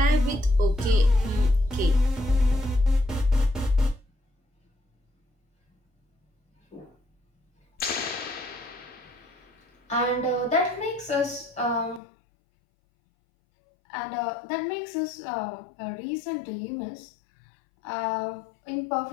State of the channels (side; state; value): right; drops out; at 12.0 s